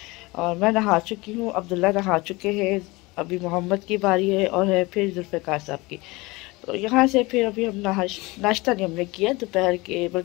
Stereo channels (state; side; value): quieter; right; 23.0 dB